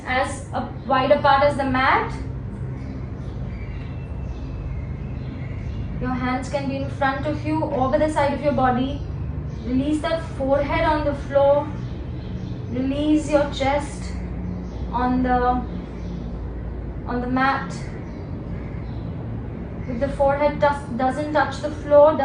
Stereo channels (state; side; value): identical; both; correlation 1.00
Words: as wide apart as the mat. Your hands can be in front of you, over the side of your body. Release that forehead on the floor. Release your chest on the mat. If the forehead doesn't touch the floor,